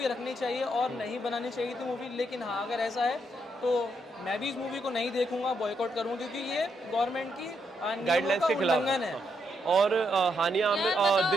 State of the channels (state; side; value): normal; both; correlation 0.78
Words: रखनी चाहिए और नहीं बनानी चाहिए थी मूवी। लेकिन हाँ, अगर ऐसा है तो मैं भी इस मूवी को नहीं देखूंगा, बॉयकॉट करूंगा, क्योंकि ये गवर्नमेंट की गाइडलाइंस के खिलाफ उल्लंघन है। और हानिया आमिर